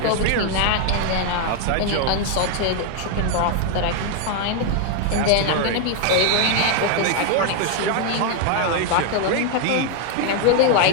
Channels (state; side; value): different; both; correlation 0.01